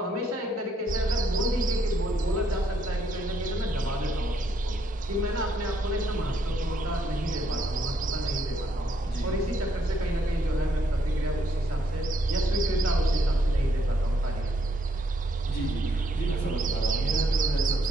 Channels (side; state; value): both; normal; correlation 0.73